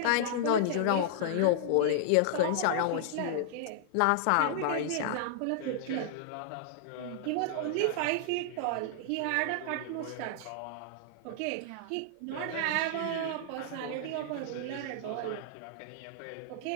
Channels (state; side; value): different; both; correlation -0.01